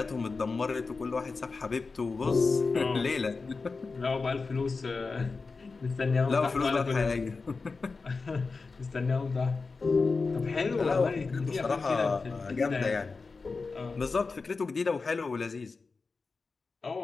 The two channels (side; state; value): right; quieter; 4.3 dB